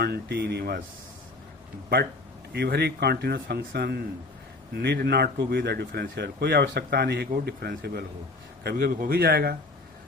but every continuous function need not to be the differentiable. कोई आवश्यकता नहीं है कि वो डिफरेंशिएबल हो, कभी कभी हो भी जाएगा,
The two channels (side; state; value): right; quieter; 3.3 dB